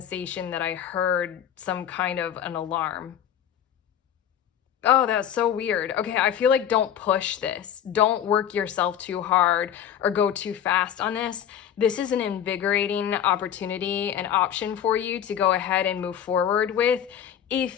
that I heard some kind of an alarm. Oh, that's so weird. Okay, I feel like don't push this. Don't work yourself too hard or go too fast on this. This is an invigorating opportunity, an option for you to go ahead and move forward with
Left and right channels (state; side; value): quieter; right; 9.7 dB